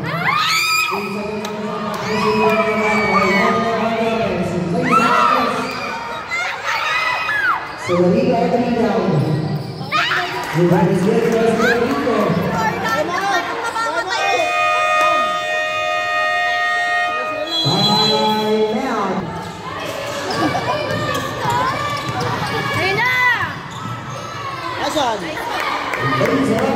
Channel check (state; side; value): identical; both; correlation 1.00